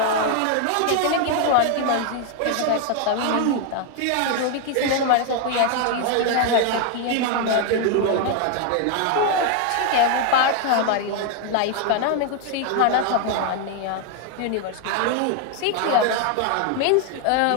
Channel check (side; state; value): both; different; correlation 0.01